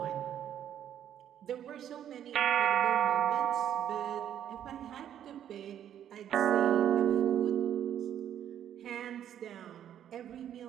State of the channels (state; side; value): quieter; left; 10.2 dB